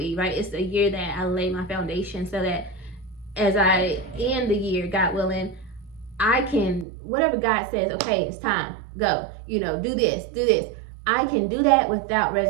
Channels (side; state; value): left; drops out; at 6.9 s